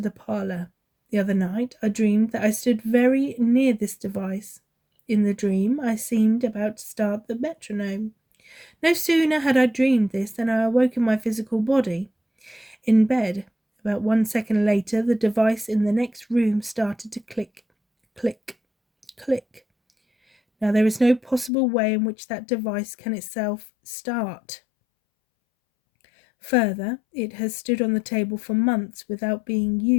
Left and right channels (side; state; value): right; drops out; at 21.5 s